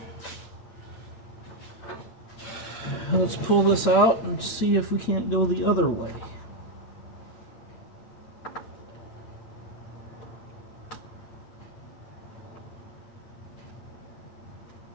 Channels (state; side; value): late; right; 8.9 ms